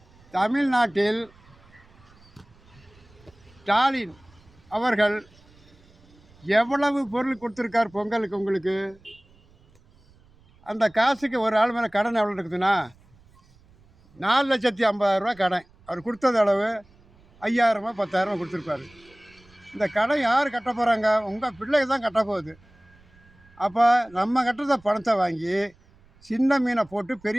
தமிழ்நாட்டில் ஸ்டாலின் அவர்கள் எவ்வளவு பொருள் கொடுத்துருக்கார் பொங்கலுக்கு? உங்களுக்கு அந்த காசுக்கு ஒரு ஆள் மேலே கடன் எவ்வளோ இருக்குதுன்னா 4,50,000 கடன். அவர் கொடுத்தது அளவு 5,000 10,000 கொடுத்துருப்பாரு. இந்த கடன் யார் கட்ட போகிறாங்க? உங்கள் பிள்ளைங்க தான் கட்ட போகுது. அப்போ நம்ம கட்டுறத பணத்தை வாங்கி சின்ன மீனை போட்டு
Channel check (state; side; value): noise; right; rumble, 29 dB below the sound